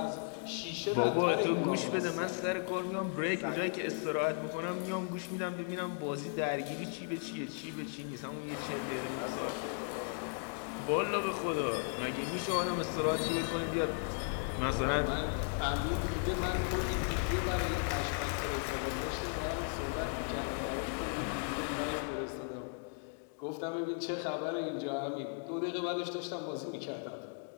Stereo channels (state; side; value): silent; right; 54 dB below the other